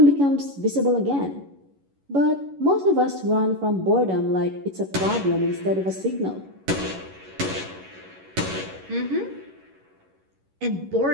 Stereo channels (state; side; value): late; left; 11 ms